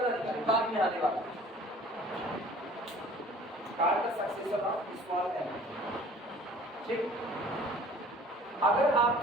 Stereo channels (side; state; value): both; normal; correlation 0.49